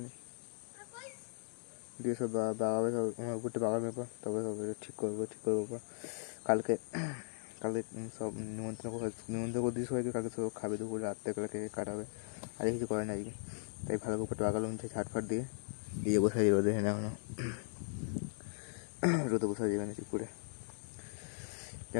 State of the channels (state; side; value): silent; right; digital silence